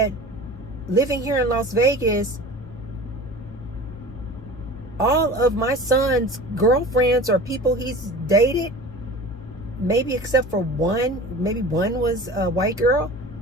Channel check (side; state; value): both; normal; correlation 0.38